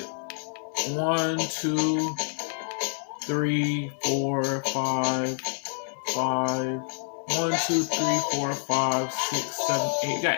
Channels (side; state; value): right; silent; 58 dB below the other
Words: 1, 2, 3, 4, 5. 1, 2, 3, 4, 5, 6, 7, 8. We